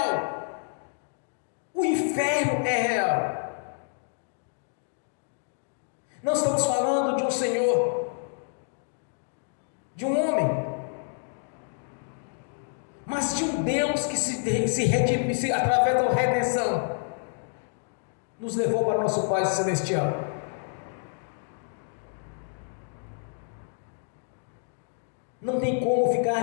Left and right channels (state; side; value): silent; right; digital silence